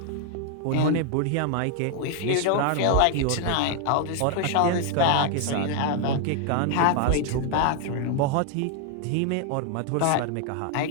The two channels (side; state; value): both; different; correlation 0.00